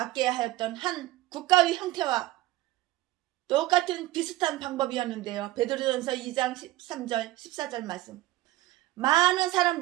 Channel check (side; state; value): left; quieter; 17.0 dB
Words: 하였던 한 국가의 형태와 똑같은 비슷한 방법이었는데요. 베드로전서 2장 13절 14절 말씀. 많은